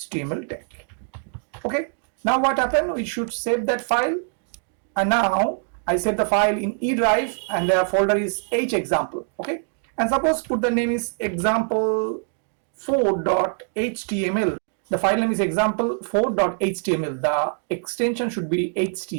tag, okay. Now what happened, we should save that file, and now I save the file in E drive, and the folder is hexample, okay, and suppose put the name is example4.html. The file name is example4.html. The extension should be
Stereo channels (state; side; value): silent; left; 61 dB below the other